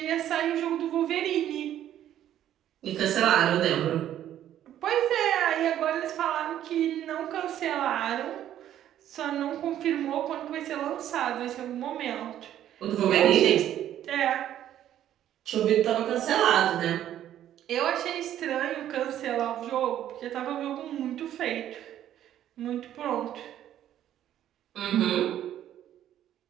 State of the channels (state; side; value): quieter; left; 11.5 dB